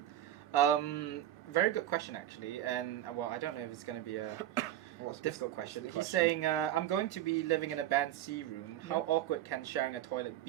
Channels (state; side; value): quieter; left; 12.6 dB